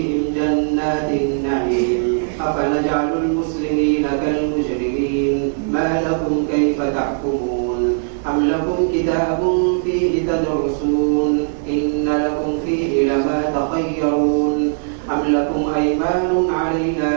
جنات النعيم أفنجعل المسلمين كالمجرمين ما لكم كيف تحكمون أم لكم كتاب فيه تدرسون إن لكم فيه لما تخيرون أم لكم أيمان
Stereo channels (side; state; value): left; silent; digital silence